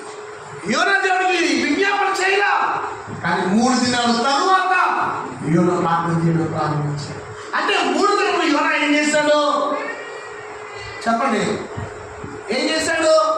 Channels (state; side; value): identical; both; correlation 1.00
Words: యోనా దేవుడికి విజ్ఞాపన చేయలా. కానీ 3 దినాల తరువాత యోనా ప్రార్థన చేయడం ప్రారంభించాడు. అంటే 3 దినములు యోనా ఏం చేశాడు చెప్పండి? ఏం చేశాడు?